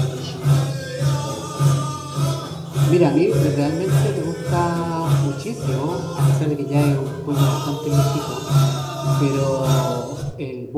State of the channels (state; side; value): identical; both; correlation 1.00